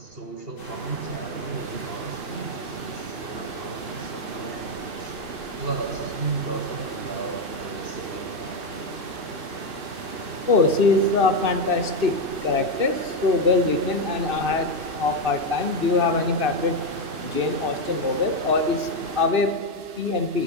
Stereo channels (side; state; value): left; late; 2.6 ms